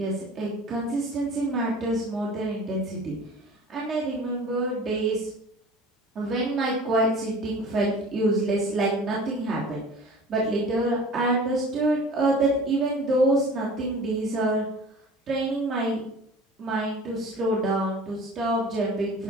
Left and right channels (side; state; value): both; normal; correlation 0.42